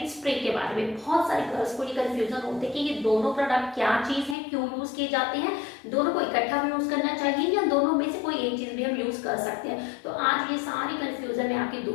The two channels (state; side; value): drops out; right; at 4.4 s